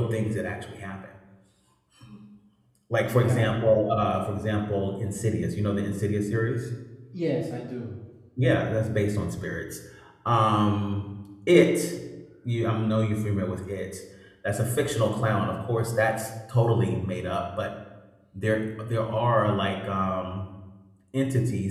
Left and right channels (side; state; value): both; identical; correlation 1.00